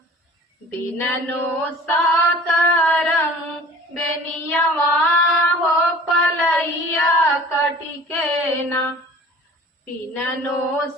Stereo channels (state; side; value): normal; both; correlation 0.45